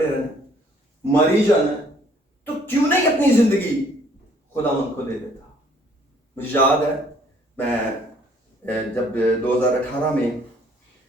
रहना, मर ही जाना है, तो क्यों नहीं अपनी जिंदगी खुदावंद को दे देता। मुझे याद है, मैं जब 2018 में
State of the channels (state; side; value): normal; both; correlation 0.61